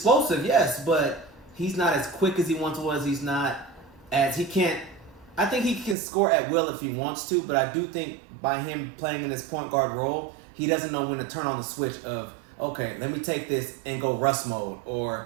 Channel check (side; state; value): left; drops out; at 6.0 s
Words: yes, but he's not as quick as he once was. He's not as he can't. I think he can score at will if he wants to, but I do think by him playing in this point guard role, he doesn't know when to turn on the switch of, okay, let me take this and go Russ mode,